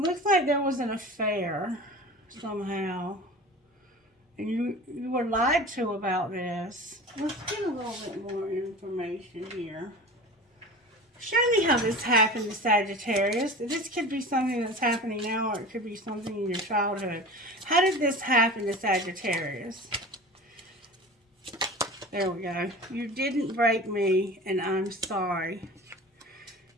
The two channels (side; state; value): both; normal; correlation 0.35